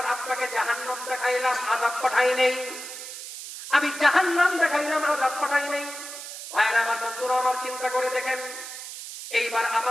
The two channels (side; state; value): right; noise; hiss, 10 dB below the sound